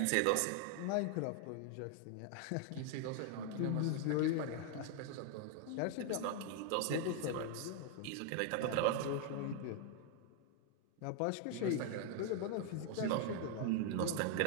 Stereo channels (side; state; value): both; different; correlation 0.00